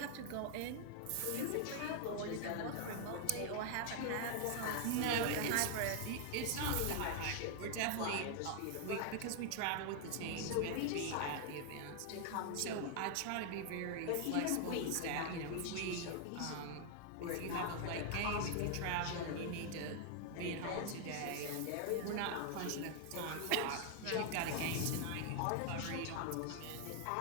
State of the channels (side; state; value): both; different; correlation 0.00